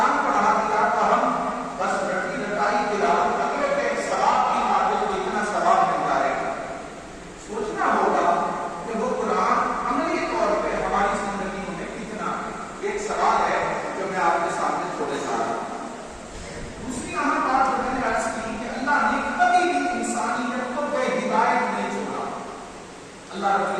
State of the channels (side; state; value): both; identical; correlation 1.00